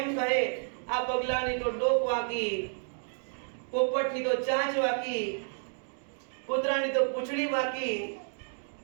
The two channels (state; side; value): silent; left; 57 dB below the other